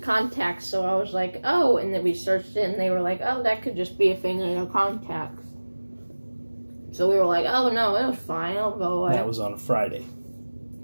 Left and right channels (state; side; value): inverted; both; correlation -1.00